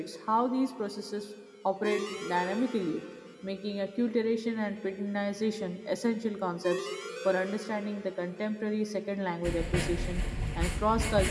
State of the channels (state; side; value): identical; both; correlation 1.00